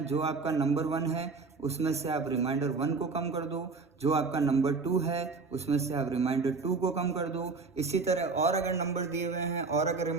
जो आपका नंबर 1 है उसमें से आप रिमाइंडर 1 को कम कर दो, जो आपका नंबर 2 है उसमें से आप रिमाइंडर 2 को कम कर दो। इसी तरह और अगर नंबर दिए हुए हैं और अगर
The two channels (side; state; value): left; quieter; 4.3 dB